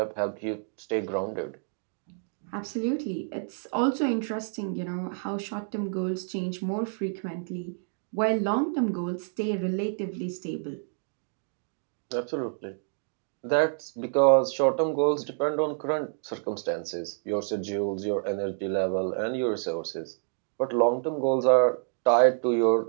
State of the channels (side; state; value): left; silent; digital silence